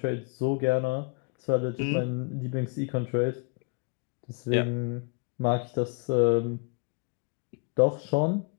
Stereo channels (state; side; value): quieter; right; 34.5 dB